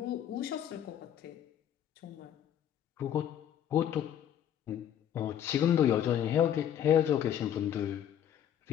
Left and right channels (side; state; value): right; quieter; 10.1 dB